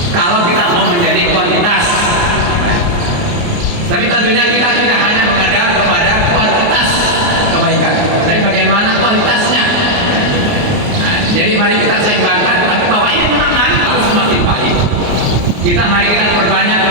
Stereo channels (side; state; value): left; late; 29 ms